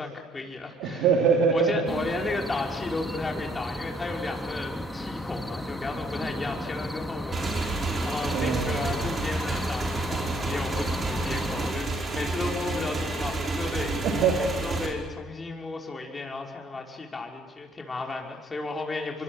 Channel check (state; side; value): normal; both; correlation 0.66